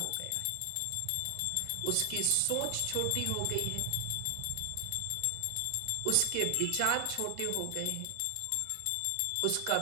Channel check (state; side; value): different; both; correlation 0.00